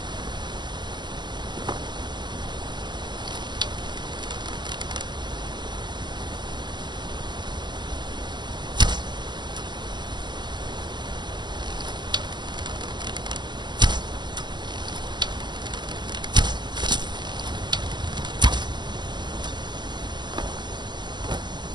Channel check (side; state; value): left; late; 0.22 ms